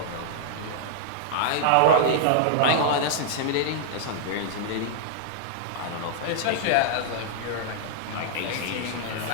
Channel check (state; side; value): different; both; correlation -0.01